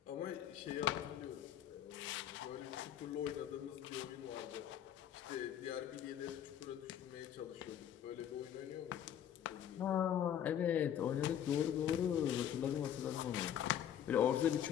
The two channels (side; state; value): right; quieter; 10.0 dB